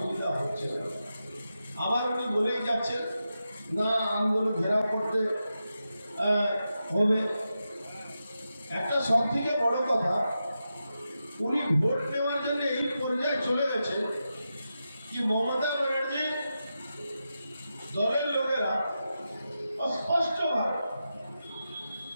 হচ্ছে না। আবার উনি বলেই যাচ্ছেন না আন্দোলন ঘেরাও করতে হবে। একটা সব থেকে বড় কথা, উনি ভোট নেওয়ার জন্য এই পর্যায়ে চলে গেছে কি মমতা ব্যানার্জি দলের লোকেরা স্পষ্টভাবে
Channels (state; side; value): inverted; both; correlation -0.89